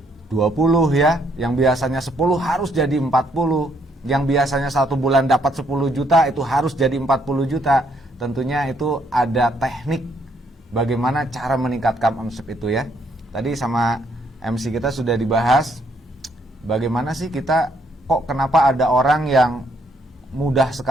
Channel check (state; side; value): normal; both; correlation 0.70